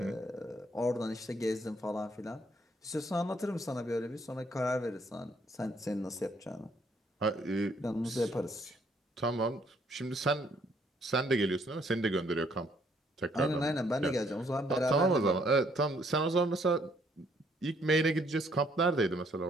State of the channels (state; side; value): normal; both; correlation 0.67